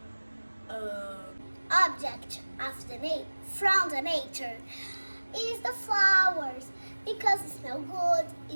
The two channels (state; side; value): inverted; both; correlation -1.00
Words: Object of from the nature is the flowers because it smells good,